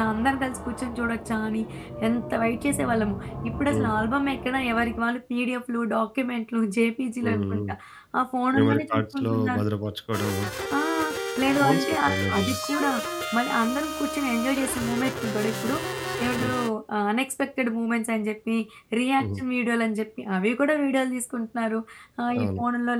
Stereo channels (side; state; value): both; identical; correlation 1.00